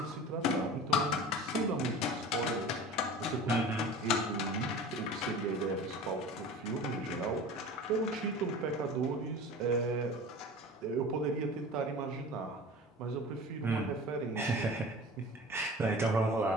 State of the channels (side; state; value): both; normal; correlation 0.37